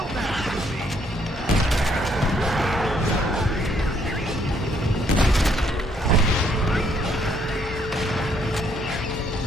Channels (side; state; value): both; normal; correlation 0.68